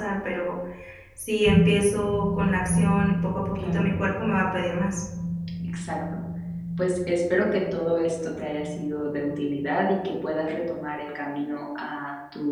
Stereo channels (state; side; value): identical; both; correlation 1.00